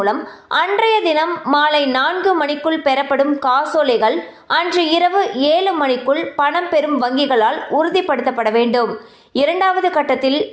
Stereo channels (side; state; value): both; identical; correlation 1.00